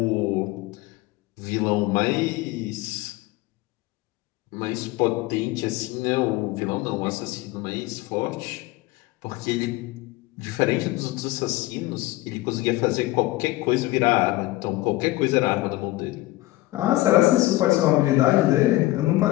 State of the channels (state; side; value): quieter; right; 18.6 dB